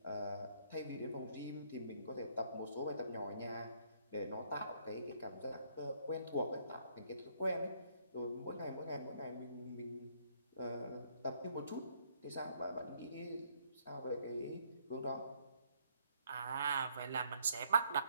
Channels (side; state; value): both; inverted; correlation -0.67